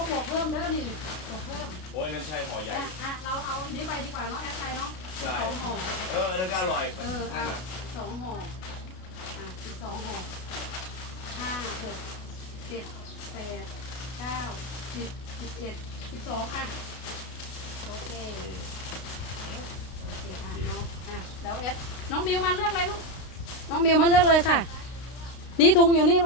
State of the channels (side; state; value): right; late; 32 ms